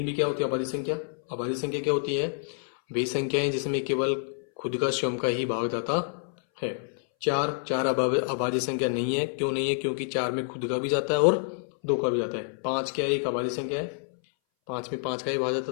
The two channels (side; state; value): right; silent; 59 dB below the other